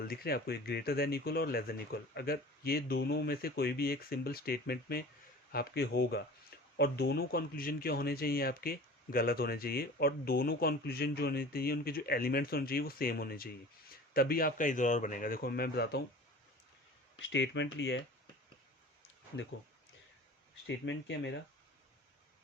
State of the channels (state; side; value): normal; both; correlation 0.41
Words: दिख रहे हैं आपको, एक ग्रेटर देन इक्वल और लेस देन इक्वल, अगर ये दोनों में से कोई भी एक सिंबल स्टेटमेंट में आपके होगा, और दोनों कंक्लूजन क्या होने चाहिए आपके, गलत होने चाहिए, और दोनों कंक्लूजन जो होने चाहिए उनके जो एलिमेंट्स होने चाहिए वो सेम होने चाहिए, तभी आपका ईदर और बनेगा। देखो मैं बताता हूँ, स्टेटमेंट लिया है, देखो स्टेटमेंट क्या है मेरा,